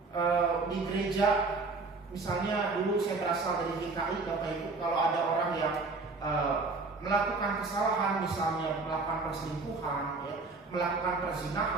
Di gereja, misalnya dulu saya berasal dari DKI, Bapak Ibu, kalau ada orang yang melakukan kesalahan, misalnya melakukan perselingkuhan, melakukan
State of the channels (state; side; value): quieter; left; 3.8 dB